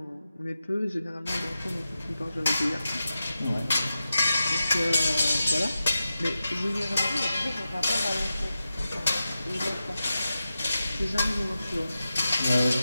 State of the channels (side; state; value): both; inverted; correlation -0.92